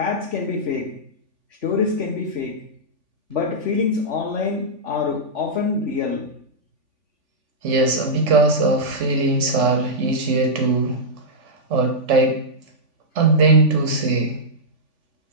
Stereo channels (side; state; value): left; late; 3.5 ms